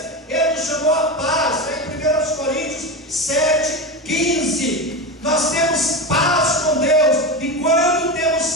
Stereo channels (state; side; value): normal; both; correlation 0.20